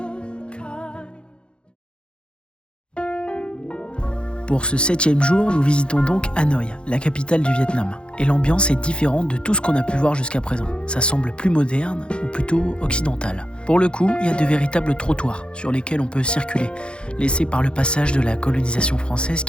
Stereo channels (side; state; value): right; late; 0.055 ms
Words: kind. Pour ce 7e jour, nous visitons donc Hanoï, la capitale du Vietnam. Et l'ambiance est différente de tout ce qu'on a pu voir jusqu'à présent. Ça semble plus moderne ou plutôt occidental. Pour le coup, il y a de véritables trottoirs sur lesquels on peut circuler, laissés par le passage de la colonisation française